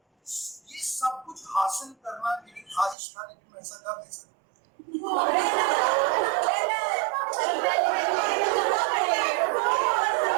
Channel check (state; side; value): drops out; left; at 3.0 s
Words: ये सब कुछ हासिल करना मेरी ख्वाहिश था, लेकिन मैं ऐसा कर नहीं सकता.